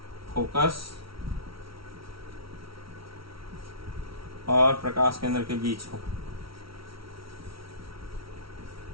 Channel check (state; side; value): late; left; 0.75 ms